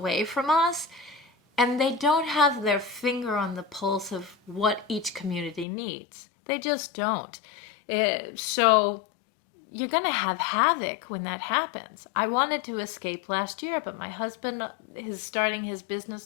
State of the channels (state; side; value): drops out; right; at 5.7 s